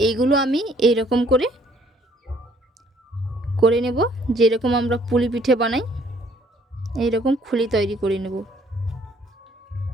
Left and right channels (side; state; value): both; normal; correlation 0.62